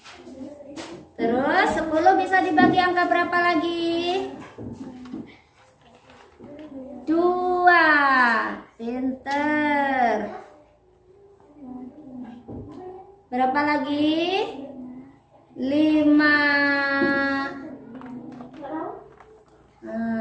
Terus 10 bisa dibagi angka berapa lagi? 2. Pinter. Berapa lagi? 5.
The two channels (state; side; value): identical; both; correlation 1.00